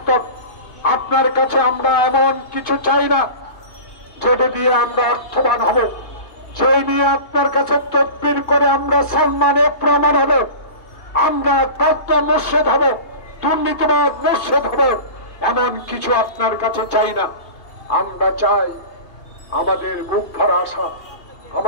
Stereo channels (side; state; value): right; late; 2.8 ms